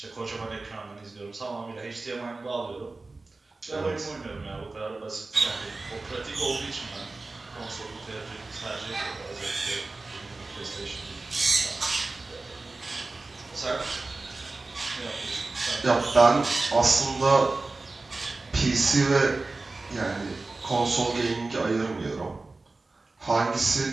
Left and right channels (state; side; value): quieter; left; 3.4 dB